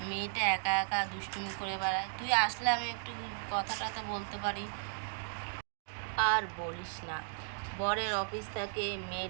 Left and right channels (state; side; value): silent; left; digital silence